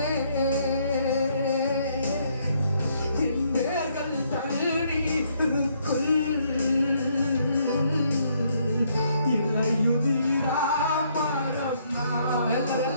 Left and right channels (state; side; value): inverted; both; correlation -0.70